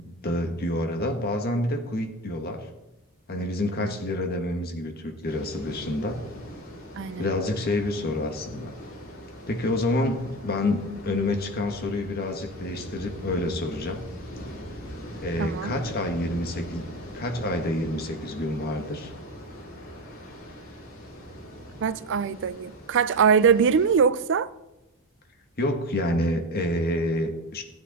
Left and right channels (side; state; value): both; normal; correlation 0.22